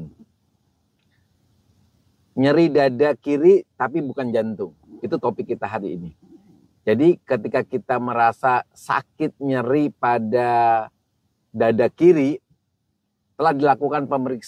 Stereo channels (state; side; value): identical; both; correlation 1.00